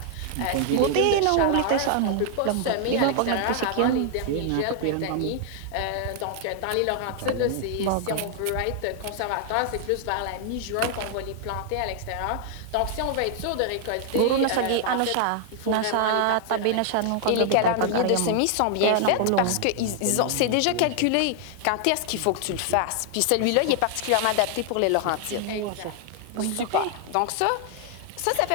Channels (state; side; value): different; both; correlation 0.00